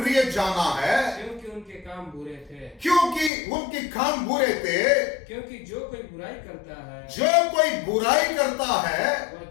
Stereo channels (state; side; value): drops out; right; at 3.3 s